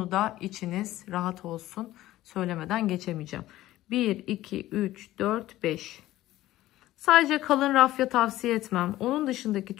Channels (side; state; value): right; quieter; 15.5 dB